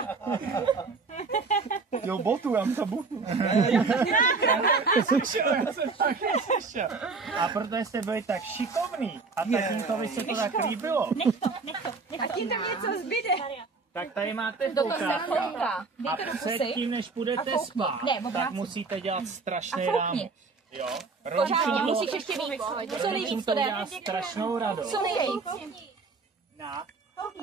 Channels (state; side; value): quieter; left; 4.3 dB